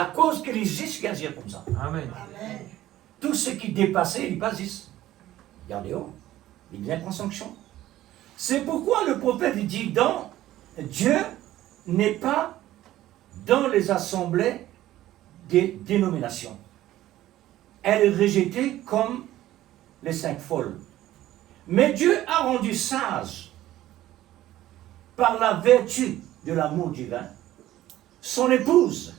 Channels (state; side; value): quieter; left; 14.4 dB